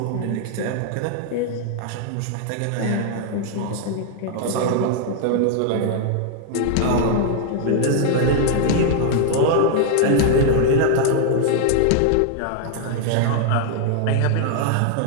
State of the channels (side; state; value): both; different; correlation -0.01